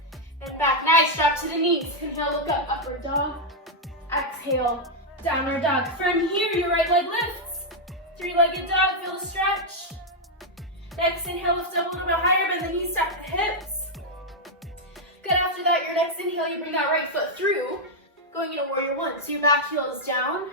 and back. Nice, drop to the knees. Inhale, look up, upward dog. Exhale, downward dog. From here, your right leg lifts. 3-legged dog, feel the stretch. Next inhale, lift up a little bit higher, bend the knees, stack the hips. Good, after that, your next inhale, you bring that right foot through. Going into warrior 1. So your back heel is down,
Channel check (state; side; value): normal; both; correlation -0.01